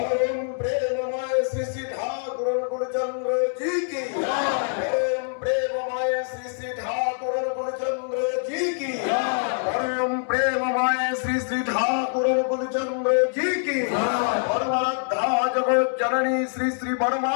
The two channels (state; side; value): silent; right; 62 dB below the other